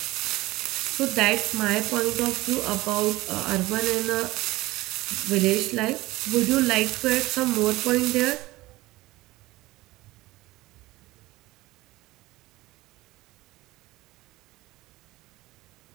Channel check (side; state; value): left; quieter; 19.2 dB